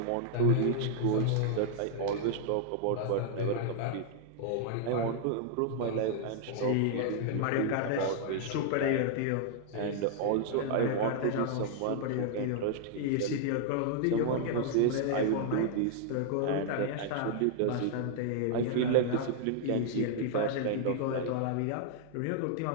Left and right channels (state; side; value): different; both; correlation -0.01